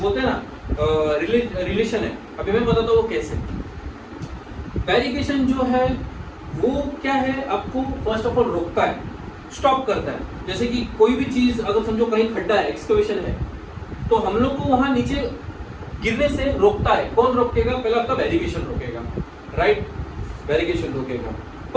बोलते हैं ना रिलेशन है। अभी मैं बताता हूँ वो कैसे। बैरिकेशन जो है वो क्या है, आपको फर्स्ट ऑफ ऑल रोकता है, स्टॉप करता है। जैसे कि कोई भी चीज अगर समझो कहीं खड्डा है, एक्सकवेशन है, तो हम लोग को वहां नीचे गिरने से रोकता है। कौन रोकेगा? पहले आपका बैरिकेशन रोकेगा, राइट? बैरिकेशन रोकेगा।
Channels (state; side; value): identical; both; correlation 1.00